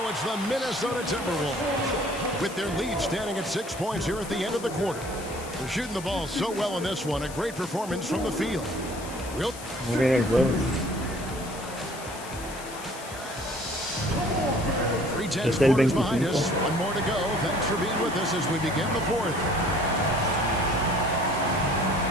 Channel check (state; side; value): noise; left; hiss, 15 dB below the sound